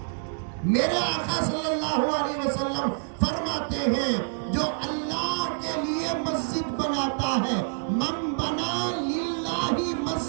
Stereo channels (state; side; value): silent; left; digital silence